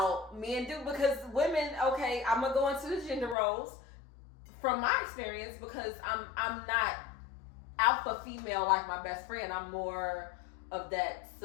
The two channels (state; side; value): drops out; right; at 3.4 s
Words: men do because women. Okay, I'm gonna go into the gender roles from my experience because I'm not alpha female like my best friend. I'm more of that